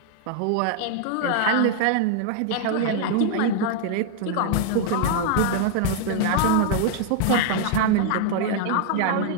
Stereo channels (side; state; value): both; different; correlation 0.00